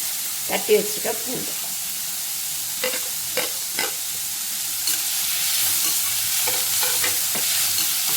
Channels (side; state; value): both; normal; correlation 0.95